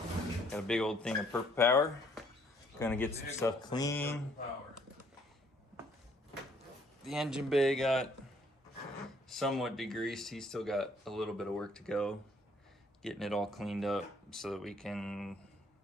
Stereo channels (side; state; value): both; normal; correlation 0.64